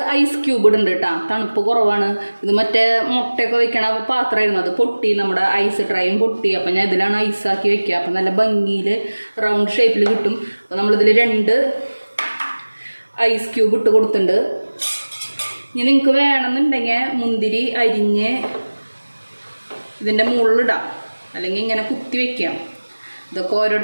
ഐസ് ക്യൂബ് ഇടുന്നുണ്ട് കേട്ടോ. തണുപ്പ് കുറവാണ്. ഇത് മറ്റേ മുട്ടയൊക്കെ വെക്കണ പാത്രമായിരുന്നു, അത് പൊട്ടി, നമ്മുടെ ഐസ് ട്രൈയും പൊട്ടി. അപ്പം ഞാൻ ഇതിലാണ് ഐസാക്കി വെക്കുക. അപ്പം നല്ല ഭംഗിയിൽ റൗണ്ട് ഷേപ്പിൽ കിട്ടും. അപ്പം നമ്മളിതിൽ 2 ഐസ് ക്യൂബ് ഇട്ട് കൊടുത്തിട്ടുണ്ട്. ഇനി നിങ്ങൾക്ക് വേണമെന്നുണ്ടെങ്കിൽ മുന്തിരി അരിഞ്ഞ് ഇതിൻ്റെ മുകളിലിടാം, അല്ലെങ്കിൽ ഇങ്ങനെ കുത്തി വയ്ക്കാം. ഇതൊക്കെ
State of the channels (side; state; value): both; inverted; correlation -1.00